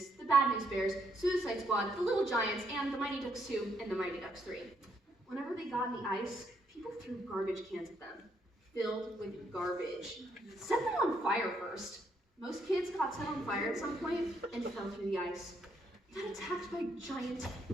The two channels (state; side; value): normal; both; correlation 0.74